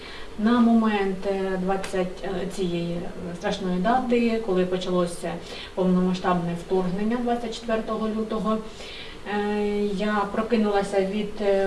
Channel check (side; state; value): both; identical; correlation 1.00